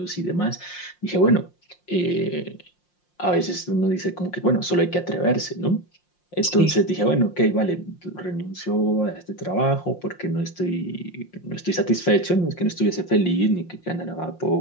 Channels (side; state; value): right; late; 5.6 ms